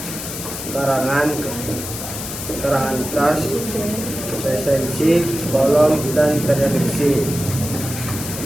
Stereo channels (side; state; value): left; noise; hiss, 8 dB below the sound